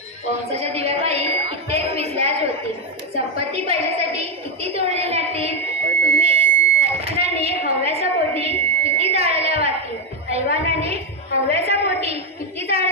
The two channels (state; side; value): normal; both; correlation 0.06